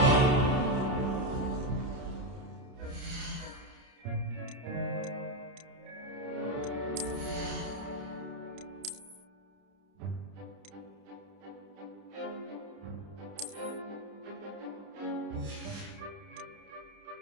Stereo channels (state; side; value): late; left; 30 ms